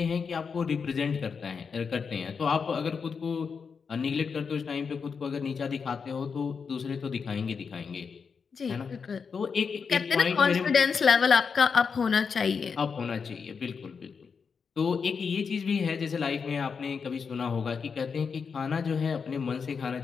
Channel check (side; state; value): right; quieter; 5.8 dB